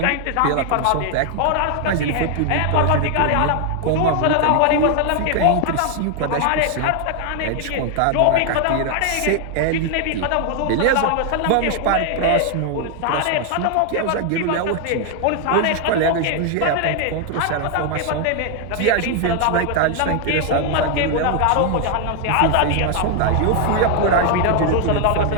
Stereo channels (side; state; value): both; different; correlation 0.00